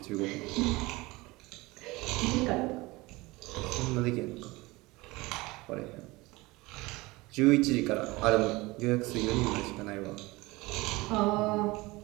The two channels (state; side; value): quieter; left; 22.0 dB